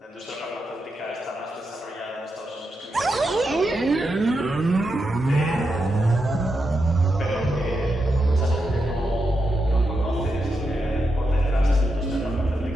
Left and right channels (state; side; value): normal; both; correlation 0.86